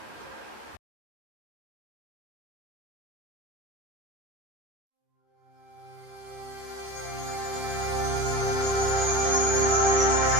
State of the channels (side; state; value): left; late; 13 ms